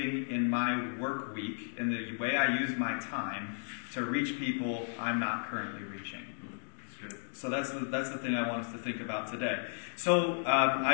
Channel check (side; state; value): right; silent; digital silence